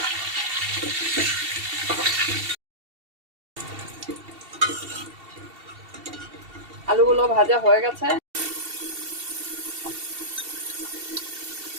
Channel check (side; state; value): left; late; 2.7 ms